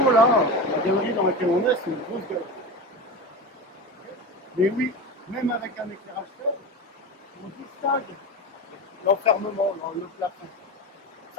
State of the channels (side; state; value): both; normal; correlation 0.25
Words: là, la galerie dans laquelle on est, c'est une grosse galerie. Mais oui, même avec un éclairage faible, on distingue l'enfermement dans le plafond.